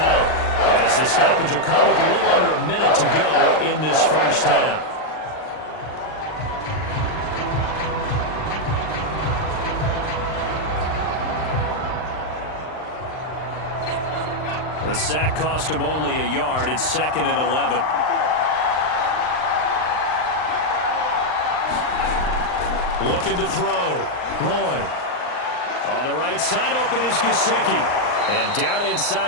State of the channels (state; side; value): late; right; 39 ms